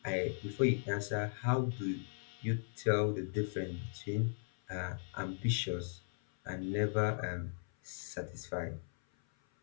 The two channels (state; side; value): silent; right; 53 dB below the other